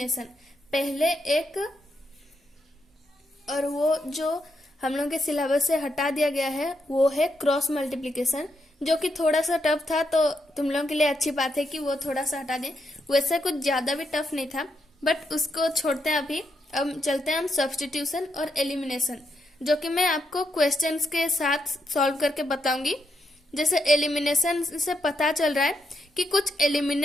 पहले एक, और वो जो हम लोग के सिलेबस से हटा दिया गया है वो है क्रॉस मल्टीप्लिकेशन, जो कि थोड़ा सा टफ था, तो तुम लोगों के लिए अच्छी बात है कि वो थोड़ा सा हटा दें। वैसे कुछ ज्यादा भी टफ नहीं था, बट उसको छोड़ते हैं अभी। अब चलते हैं हम सब्स्टिट्यूशन और एलिमिनेशन, जो कि मैं आपको क्वेश्चंस के साथ सॉल्व करके बताऊंगी। जैसे एलिमिनेशन से पता चल रहा है कि कुछ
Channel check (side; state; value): both; normal; correlation 0.81